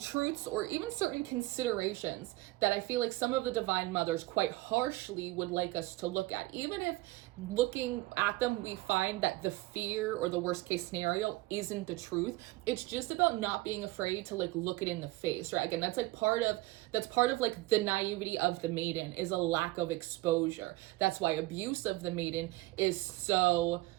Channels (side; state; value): left; quieter; 20.1 dB